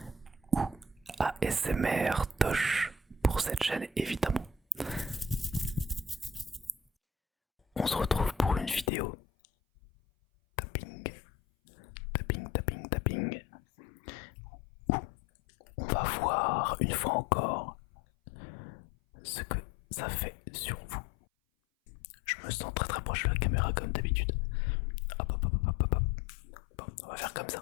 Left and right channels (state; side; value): drops out; right; at 8.9 s